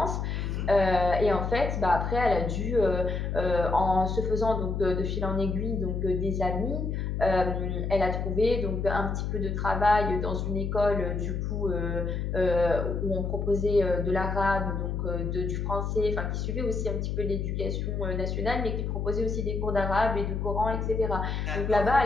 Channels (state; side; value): noise; left; hum, 2 dB below the sound